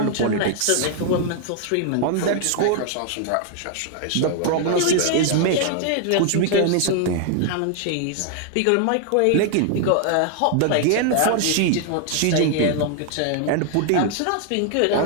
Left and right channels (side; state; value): both; different; correlation 0.00